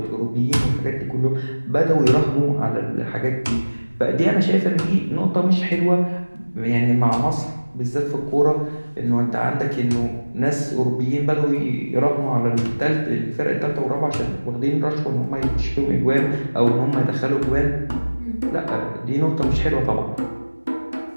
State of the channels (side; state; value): both; inverted; correlation -1.00